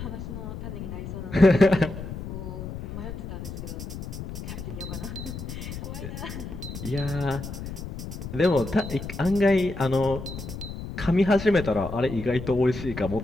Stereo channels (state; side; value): noise; left; rumble, 8 dB below the sound